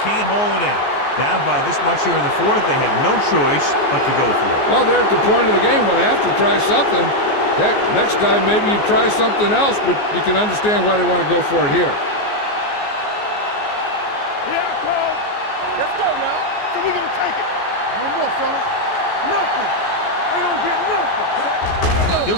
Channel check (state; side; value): late; right; 14 ms